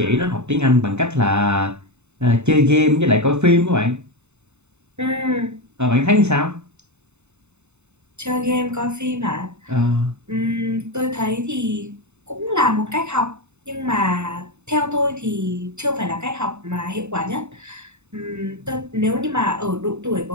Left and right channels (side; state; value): left; late; 0.82 ms